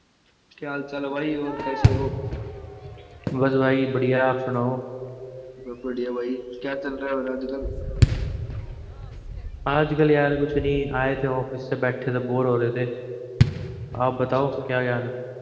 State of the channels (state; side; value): identical; both; correlation 1.00